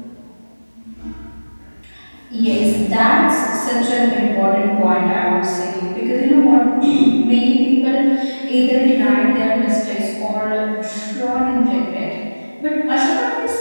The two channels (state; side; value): inverted; both; correlation -1.00